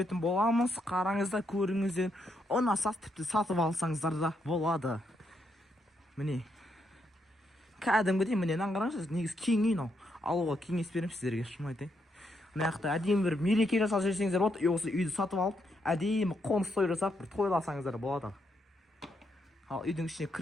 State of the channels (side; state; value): both; normal; correlation 0.78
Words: боламыз. Қараңыздар, көріңіздер. Ұнаса тіпті сатып алсаңыздар да болады. Міне кәдімгідей міне қараңыздар, негізі кең үй мынау. Алуға кеңес беремін сіздерге, шын айтайын. Мына жақта әдемі бір мереке жасап жүрсеңіздер болады, осы үйді сатып алып, әдемі қоныс той жасап бір тойласаңыздар болады. Ал үйдің ішіне